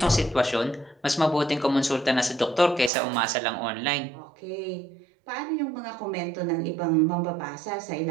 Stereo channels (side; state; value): left; drops out; at 2.9 s